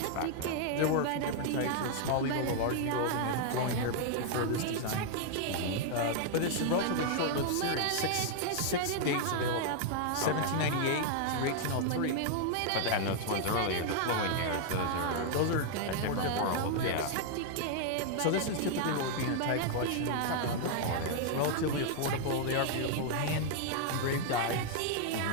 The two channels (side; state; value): both; different; correlation 0.00